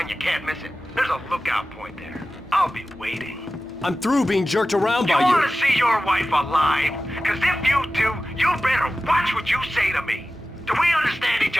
you can't miss it. There's a lookout point there. I'll be waiting. I'm through being jerked around by You you. want to see your wife alive? Because if you do, you better watch what you say to me. Do we understand each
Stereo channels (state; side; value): normal; both; correlation 0.95